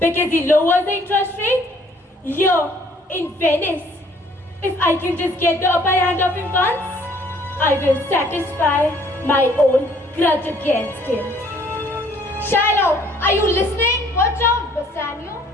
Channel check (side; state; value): both; normal; correlation 0.60